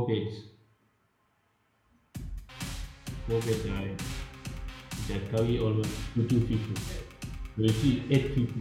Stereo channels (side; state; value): both; identical; correlation 1.00